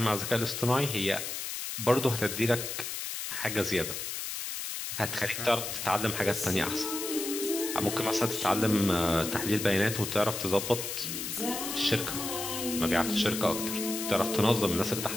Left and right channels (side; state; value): left; noise; hiss, 5 dB below the sound